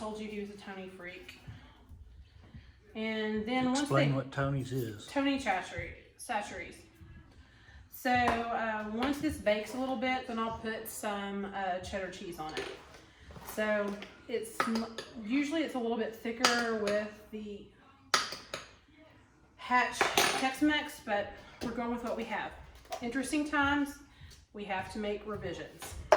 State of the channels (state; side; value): identical; both; correlation 1.00